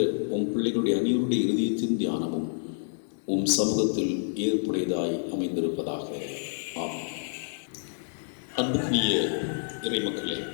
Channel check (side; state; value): right; silent; digital silence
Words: உம் பிள்ளைகளுடைய அனைவருடைய இருதயத்தின் தியானமும் உம் சமூகத்தில் ஏற்புடையதாய் அமைந்திருப்பதாக. ஆமென். அன்புக்குரிய இறைமக்களே,